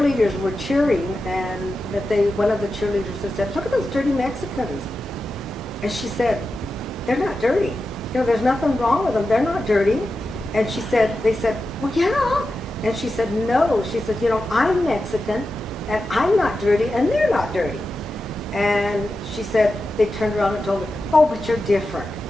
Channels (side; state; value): both; normal; correlation 0.91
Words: were cheering, and that one of the cheerleaders had said, "Look at those dirty Mexicans." And she said, "They're not dirty. You know, there's nothing wrong with them. They're not dirty." And they said, "Well, yeah." And she said, "No." She said, "You know, I'm Mexican, and I'm not dirty, and they're not dirty." And she said, they turned around and told her, "Oh, but you're different.